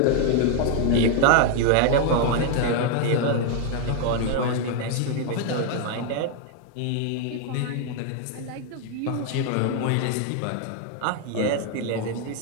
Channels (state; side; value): different; both; correlation 0.00